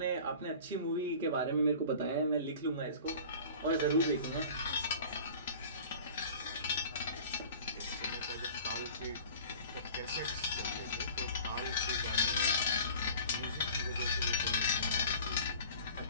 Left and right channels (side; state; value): both; inverted; correlation -0.43